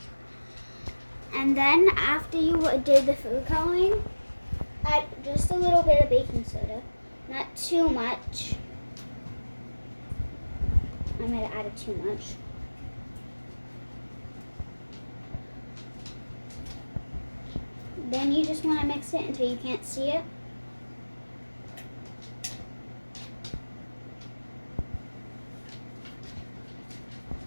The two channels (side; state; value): both; inverted; correlation -1.00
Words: And then after you did the food coloring, add just a little bit of baking soda, not too much. I might have added too much. Then you just want to mix it until you can't see it.